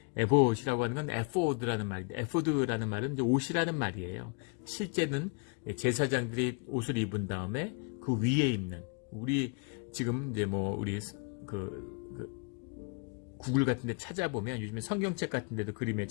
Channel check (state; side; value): quieter; right; 34.7 dB